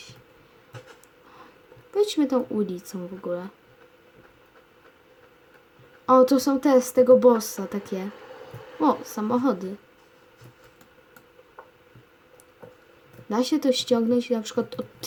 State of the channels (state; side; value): identical; both; correlation 1.00